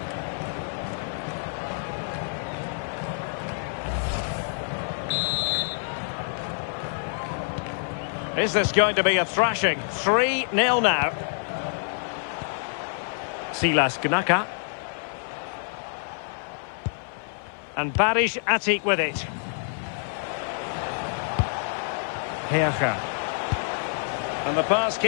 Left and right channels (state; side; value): silent; right; 56 dB below the other